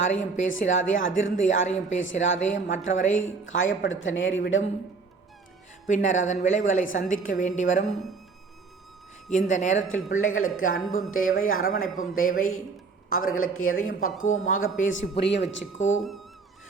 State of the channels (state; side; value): quieter; left; 4.5 dB